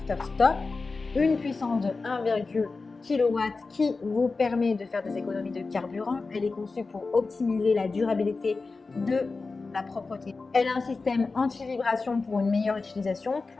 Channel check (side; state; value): right; quieter; 4.0 dB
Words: stop. Une puissance de 1,1 kW qui vous permet de faire des économies de carburant. Elle est conçue pour optimiser la durabilité de la propreté. Elle a un système anti-vibration pour une meilleure utilisation,